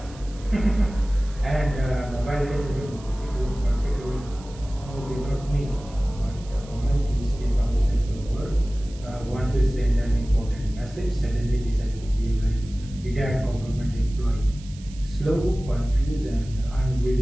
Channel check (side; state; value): right; noise; hiss, 22 dB below the sound